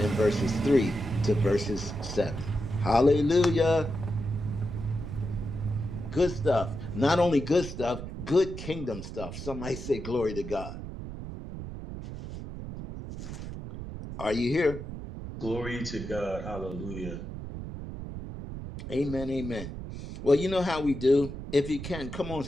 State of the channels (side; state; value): right; noise; rumble, 9 dB below the sound